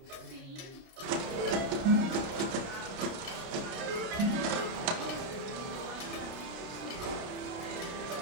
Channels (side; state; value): left; late; 30 ms